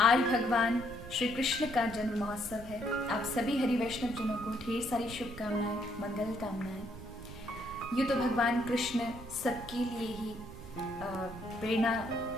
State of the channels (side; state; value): right; noise; rumble, 14 dB below the sound